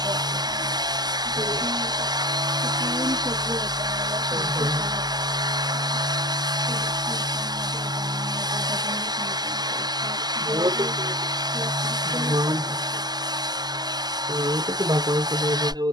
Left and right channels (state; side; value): late; left; 0.20 ms